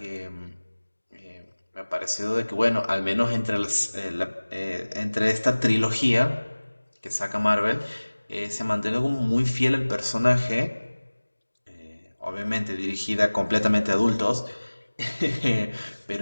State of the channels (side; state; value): both; inverted; correlation -1.00